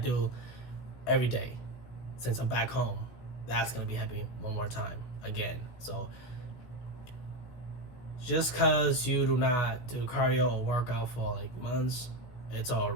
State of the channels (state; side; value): late; right; 16 ms